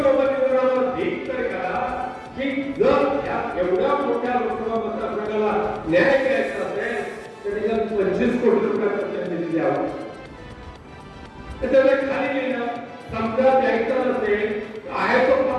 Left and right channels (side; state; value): both; identical; correlation 1.00